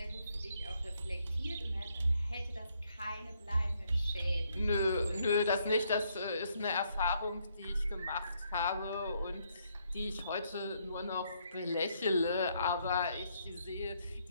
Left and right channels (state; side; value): inverted; both; correlation -0.72